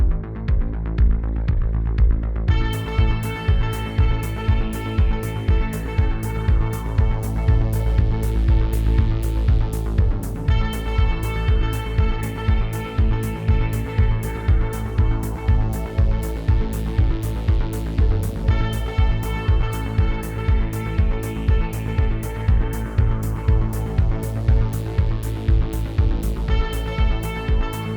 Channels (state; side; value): identical; both; correlation 1.00